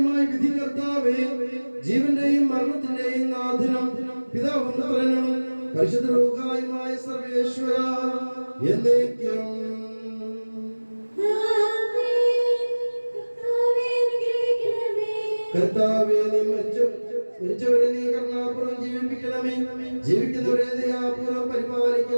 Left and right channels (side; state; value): both; inverted; correlation -1.00